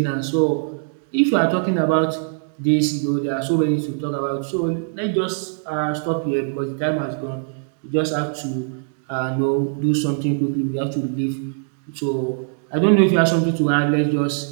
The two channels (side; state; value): left; silent; digital silence